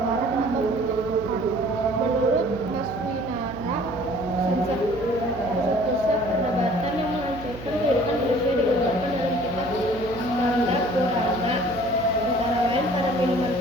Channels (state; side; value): noise; right; hum, 13 dB below the sound